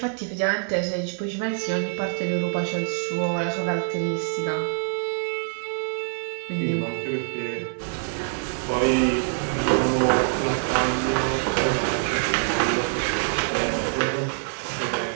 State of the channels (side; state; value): left; silent; digital silence